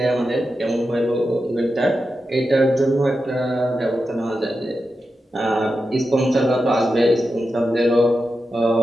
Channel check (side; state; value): both; normal; correlation 0.90